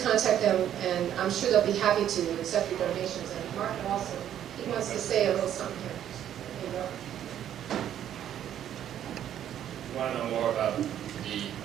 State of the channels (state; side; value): quieter; left; 10.6 dB